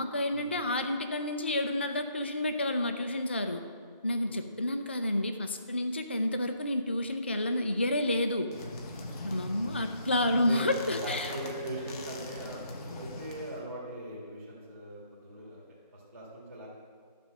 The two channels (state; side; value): inverted; both; correlation -0.69